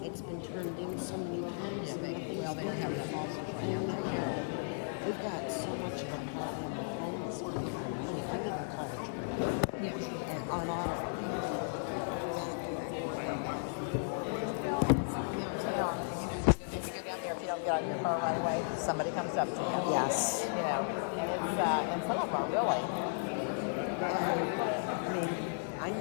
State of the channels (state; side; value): silent; right; 54 dB below the other